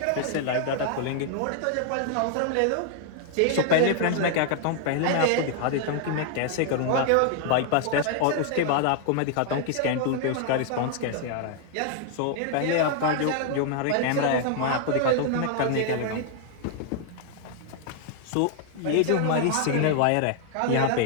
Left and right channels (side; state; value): both; different; correlation 0.00